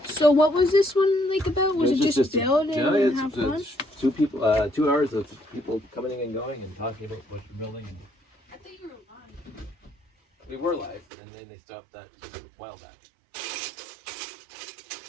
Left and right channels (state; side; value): drops out; left; at 11.1 s